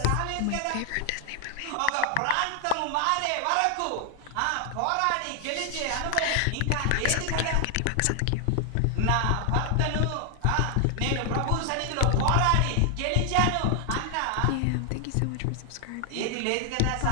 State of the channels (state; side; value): different; both; correlation 0.00